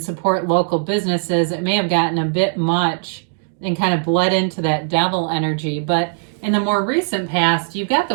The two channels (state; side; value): silent; left; 66 dB below the other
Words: support local businesses. It may have gotten a bit much and kind of bled into that devil energy. But in the more recent past, you've got